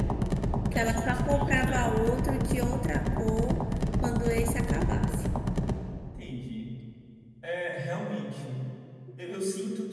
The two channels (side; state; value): both; identical; correlation 1.00